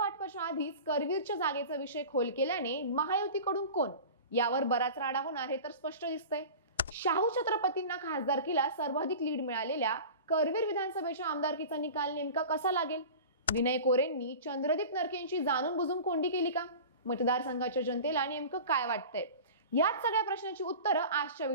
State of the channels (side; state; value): both; inverted; correlation -0.36